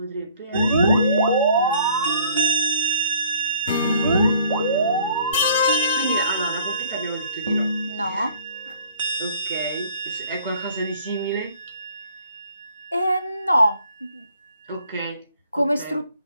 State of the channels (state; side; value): inverted; both; correlation -0.57